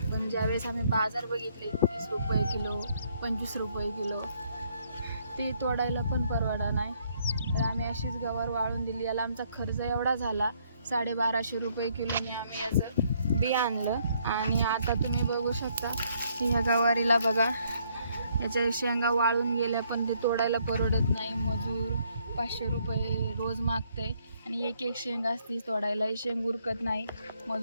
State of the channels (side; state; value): both; inverted; correlation -0.69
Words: पण ज्यावेळेस आम्ही बाजार बघितले 30 रुपये किलो, 25 रुपये किलो, ते तोडायला पण परवडा नाही. तर आम्ही अशीच गवार वाळून दिली. याला आमचा खर्च एवढा झाला, 1250 रुपये किलोने आम्ही याचं बी आणलं. आणि आता तुम्ही बघू शकता की ह्या गवारीला बघा, याच्या शेंगा वाळून गेल्या, पण ते तोडायला परवडत नाही. मजूर 500 रुपये रोज मागते आणि एक एक शेंग असती तोडायलाही शेंग उरकत नाही.